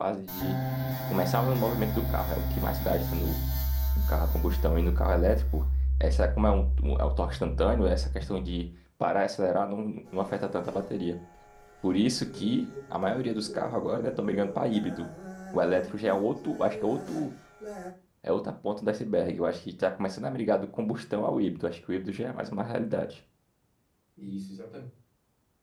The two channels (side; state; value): both; identical; correlation 1.00